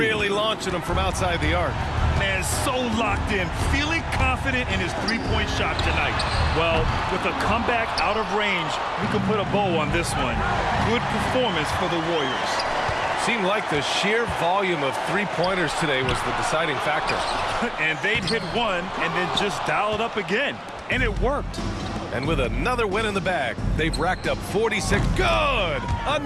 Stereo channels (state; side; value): identical; both; correlation 1.00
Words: launching them from outside the arc. Man, so locked in, feeling confident in his three-point shot tonight. Well, with a comeback out of range, we can put a bow on this one. Good performance for the Warriors. Seemed like the sheer volume of three-pointers today was the deciding factor. And they'd hit one and then just dial it up again. And it worked. And with another win in the bag, they've racked up 46. Good!